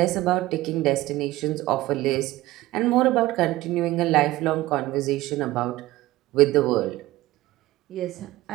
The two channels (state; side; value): quieter; left; 17.3 dB